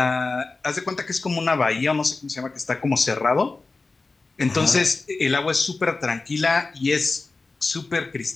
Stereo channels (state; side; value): quieter; right; 3.7 dB